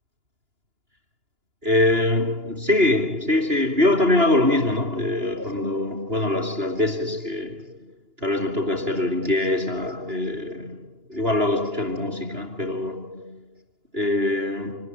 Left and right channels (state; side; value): late; left; 2.9 ms